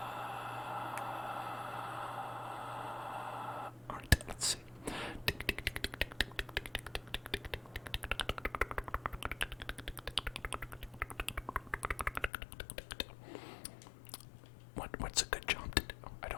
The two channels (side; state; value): right; drops out; at 12.3 s